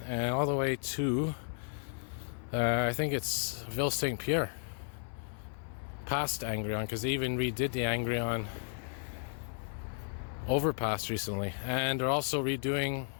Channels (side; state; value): right; silent; 55 dB below the other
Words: and all the way to, I think it's Ville Saint-Pierre. Past Angrion, because they even redid the Angrion overpass recently. And they're also redoing,